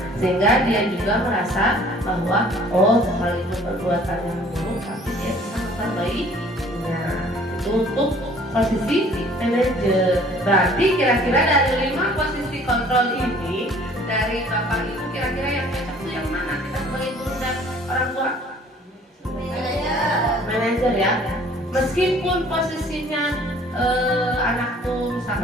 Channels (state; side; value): normal; both; correlation 0.54